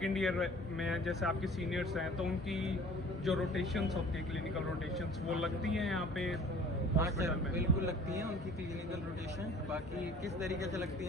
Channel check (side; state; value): both; normal; correlation 0.48